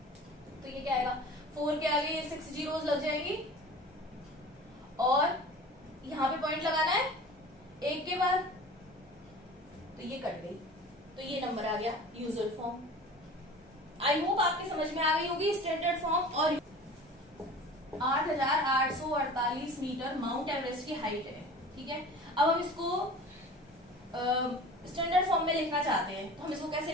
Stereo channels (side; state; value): both; normal; correlation 0.40